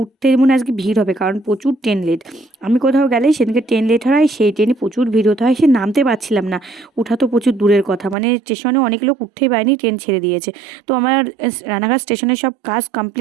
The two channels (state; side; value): drops out; left; at 8.2 s